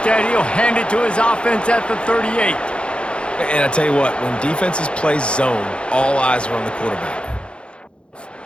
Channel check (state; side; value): late; right; 0.057 ms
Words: he'll hand it to his offense at the 38. And I tell you what, when defenses play zone, all eyes are on the quarterback.